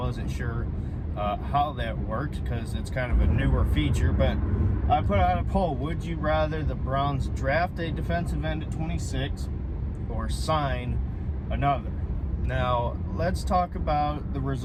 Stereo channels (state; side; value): identical; both; correlation 1.00